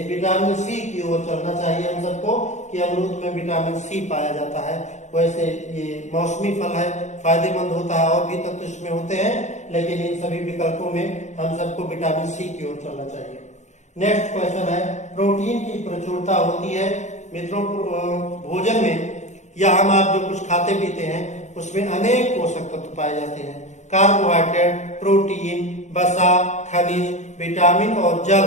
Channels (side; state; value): right; late; 0.34 ms